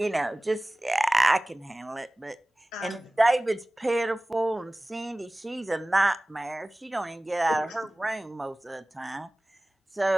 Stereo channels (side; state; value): both; normal; correlation 0.98